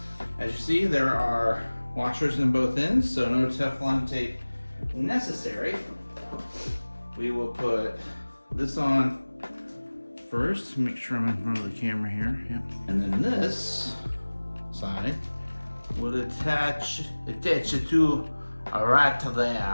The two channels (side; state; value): both; inverted; correlation -1.00